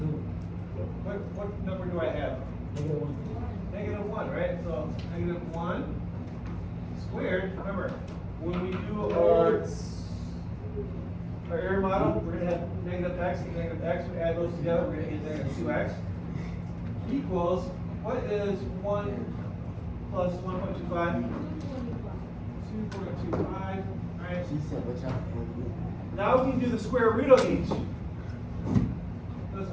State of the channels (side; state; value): both; identical; correlation 1.00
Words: What number do I have? Negative 1. Negative 1, right? So negative 1 squared. Remember, when we do our error model, we're going to have negative x and negative x. We add those together, we're going to get negative 2x equals, what is 1 plus 1.25? 2.25. All right. She said, watch out. Now we can do the square root of each. Let's